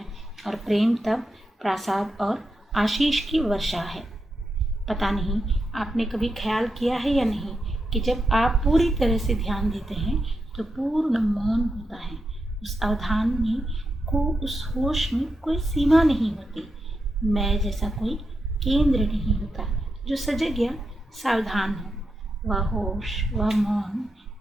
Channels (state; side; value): normal; both; correlation 0.86